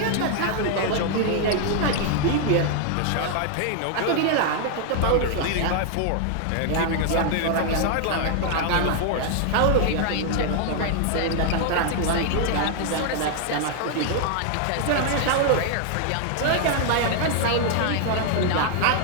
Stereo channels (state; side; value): different; both; correlation 0.00